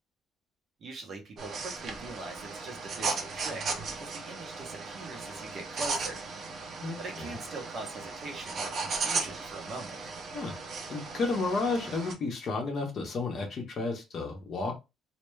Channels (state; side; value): normal; both; correlation 0.67